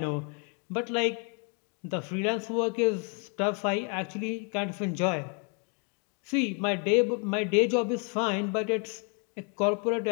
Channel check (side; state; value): right; quieter; 36.3 dB